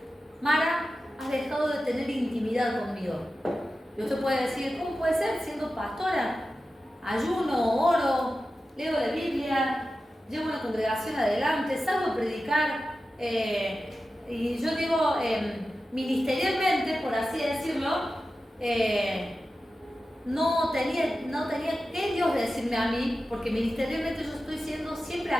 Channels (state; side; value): normal; both; correlation 0.93